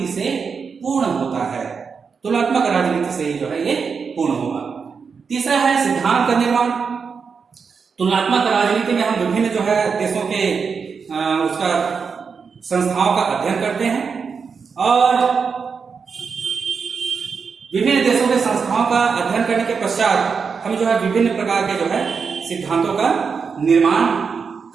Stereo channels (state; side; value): quieter; left; 5.7 dB